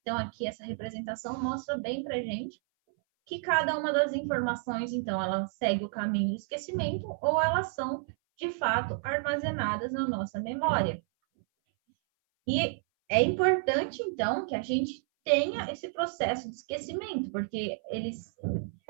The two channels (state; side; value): silent; left; 57 dB below the other